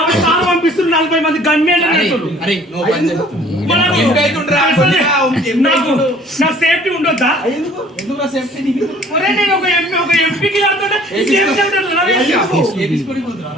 సార్లు పంపిస్తున్నారు 40 మంది గన్మేన్ నా సేఫ్టీ ఉండొద్దా నేను ఒక ఎంపీకి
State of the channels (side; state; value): both; normal; correlation 0.54